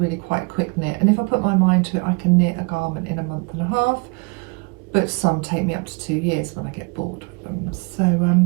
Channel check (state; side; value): quieter; left; 31.9 dB